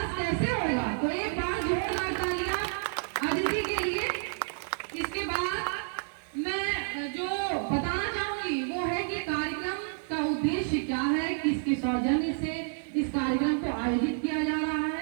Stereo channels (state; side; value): silent; left; digital silence